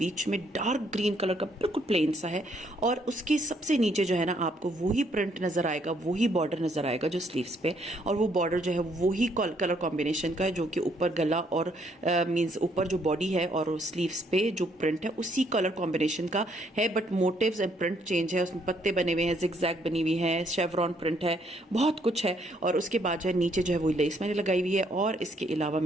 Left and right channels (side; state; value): both; normal; correlation 0.69